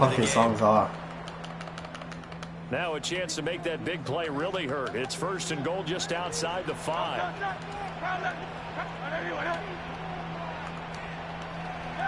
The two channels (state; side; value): identical; both; correlation 1.00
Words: these songs are. Now a chance to make that big play really hurt. It's first and goal just outside the 5.